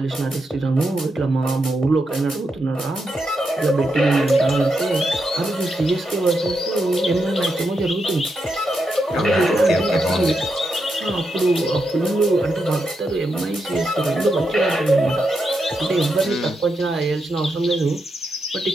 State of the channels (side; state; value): both; normal; correlation 0.84